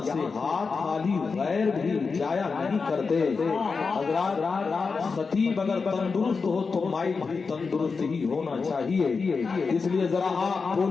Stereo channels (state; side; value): quieter; right; 4.8 dB